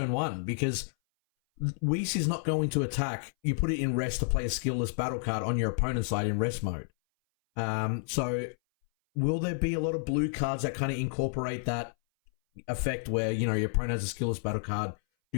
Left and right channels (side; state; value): right; silent; 57 dB below the other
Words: 1, because Whis is not going to attack. You put it in rest to play a skillless battle card on your opponent's side in rest mode. So will there be a lot of blue cards that kind of incorporate that effect where, your opponent has a skillless battle card,